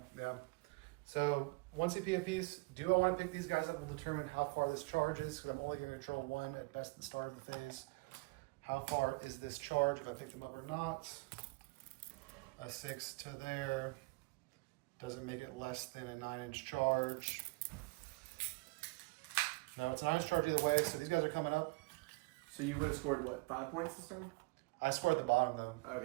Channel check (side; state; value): left; quieter; 26.2 dB